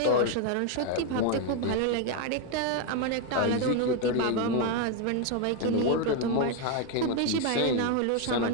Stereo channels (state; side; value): different; both; correlation 0.01